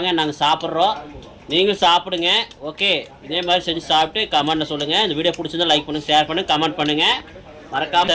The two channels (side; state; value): both; identical; correlation 1.00